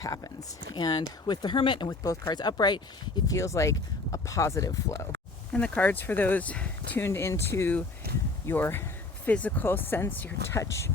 And with the Hermit and with both cards upright, it feels like a positive flow. And the cards for those tuned into your physical sense, your touch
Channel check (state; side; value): quieter; right; 3.4 dB